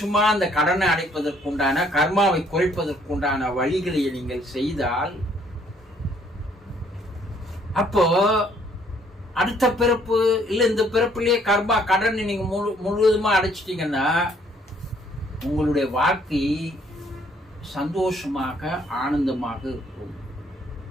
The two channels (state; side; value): normal; both; correlation 0.64